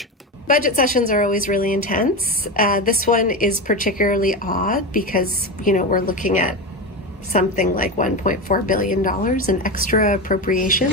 Budget sessions are always really intense. This one is particularly odd because, we're looking at something like $1.4 billion in extra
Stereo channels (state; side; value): normal; both; correlation 0.19